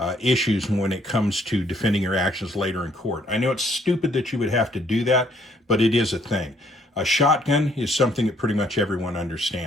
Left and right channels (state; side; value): normal; both; correlation 0.66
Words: issues when it comes to defending your actions later in court. I know it's stupid that you would have to do that, but it is a thing. A shotgun is something that pretty much everyone